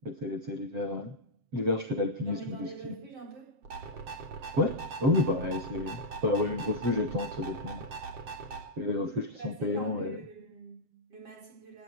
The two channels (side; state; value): left; late; 7.6 ms